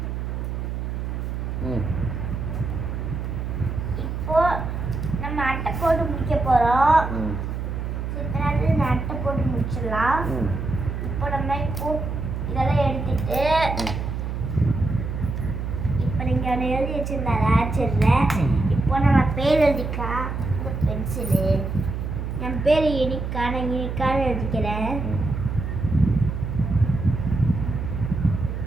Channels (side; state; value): right; noise; hum, 4 dB below the sound